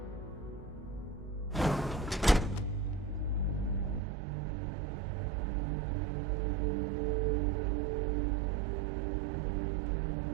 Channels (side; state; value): left; drops out; at 4.0 s